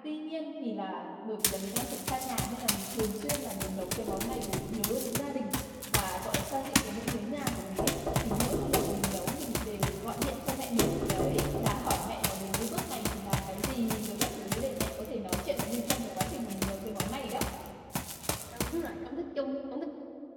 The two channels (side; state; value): both; identical; correlation 1.00